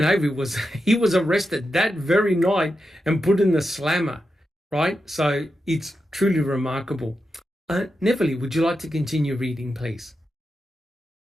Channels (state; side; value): normal; both; correlation 0.88